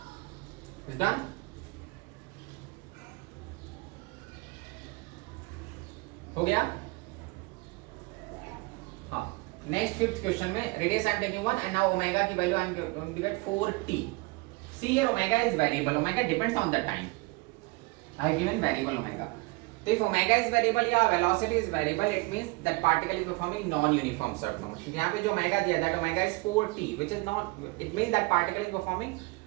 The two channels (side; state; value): left; quieter; 24.8 dB